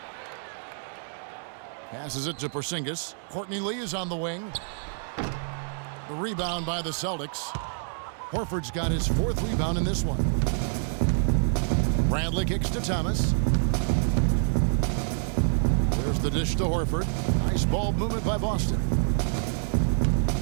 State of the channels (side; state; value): left; silent; 60 dB below the other